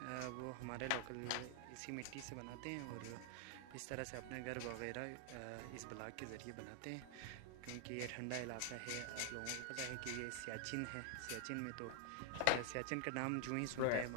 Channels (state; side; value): different; both; correlation 0.00